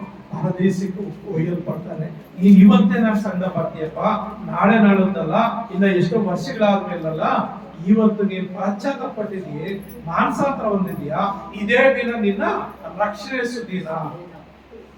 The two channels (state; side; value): identical; both; correlation 1.00